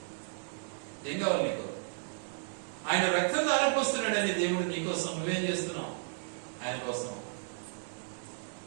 ఏం కావాలి నీకు? ఆయన రక్తం ధారపోస్తున్నాడని దేవుడు నీకోసం. నువ్వేం చేస్తున్నావు ఆయన కోసం?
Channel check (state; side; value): silent; left; digital silence